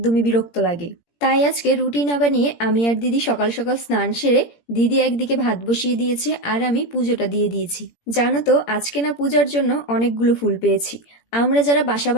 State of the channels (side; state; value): right; late; 17 ms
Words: বিরক্ত লাগে। তাই আজকে রুটি না বানিয়ে আমি আর দিদি সকাল সকাল স্নান সেরে দিদি একদিকে ভাত বসিয়ে দিয়েছে আর আমি পুজোটা দিয়ে দিয়েছি। জানো তো আজকে না পূজার জন্য অনেকগুলো ফুল পেয়েছি। আমরা যারা বাসা